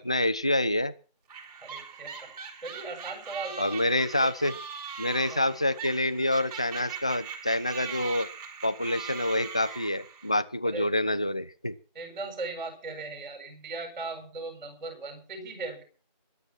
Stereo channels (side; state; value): both; inverted; correlation -0.70